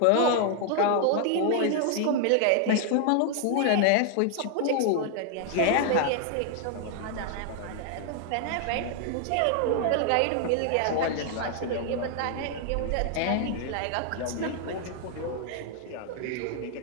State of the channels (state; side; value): different; both; correlation 0.00